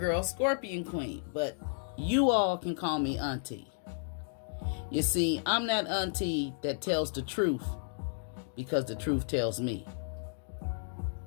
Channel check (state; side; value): silent; right; digital silence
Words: Scorpion Queen, but you all can call me Auntie. You see, I'm that auntie that tells the truth because the truth tells me.